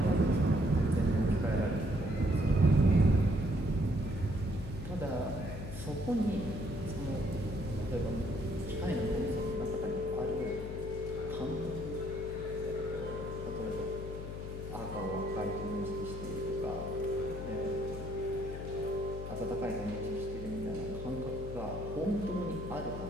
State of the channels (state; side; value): noise; left; hum, 8 dB below the sound